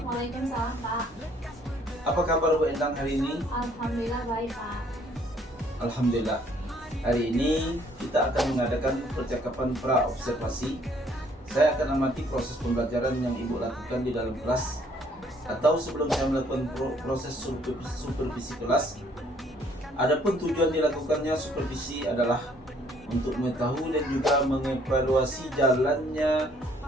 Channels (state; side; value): normal; both; correlation 0.63